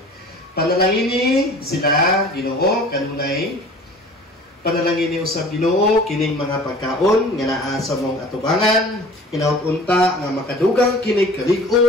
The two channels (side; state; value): both; normal; correlation 0.45